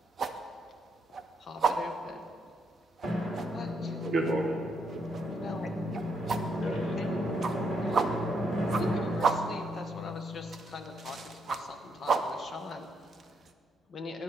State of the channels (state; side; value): normal; both; correlation 0.76